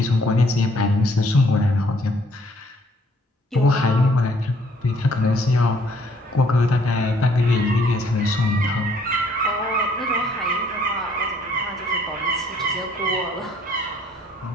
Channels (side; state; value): both; normal; correlation 0.63